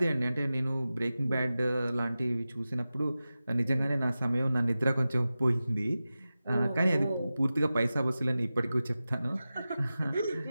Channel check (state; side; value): inverted; both; correlation -0.95